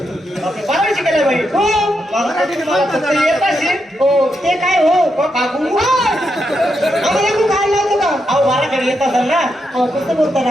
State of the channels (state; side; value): normal; both; correlation 0.83